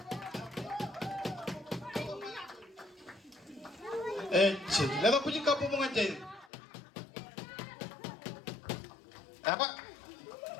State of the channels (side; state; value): right; drops out; at 6.5 s